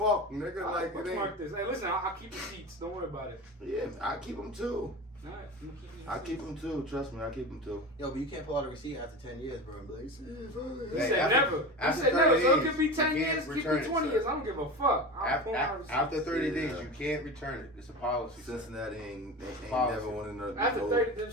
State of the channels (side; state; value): both; normal; correlation 0.28